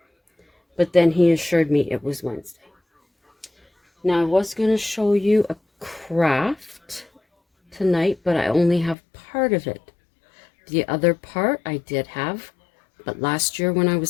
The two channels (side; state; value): right; drops out; at 9.0 s